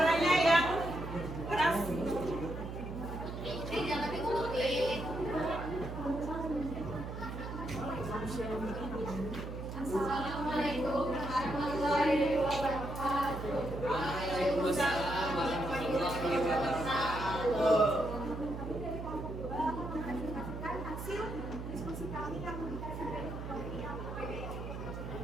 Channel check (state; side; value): noise; right; hum, 7 dB below the sound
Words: Assalamualaikum warahmatullahi wabarakatuh. Waalaikumsalam warahmatullahi wabarakatuh. Menyaksikan hasil diskusi kami yang dikasih dari